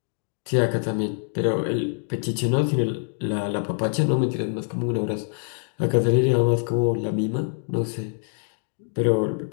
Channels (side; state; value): right; silent; 57 dB below the other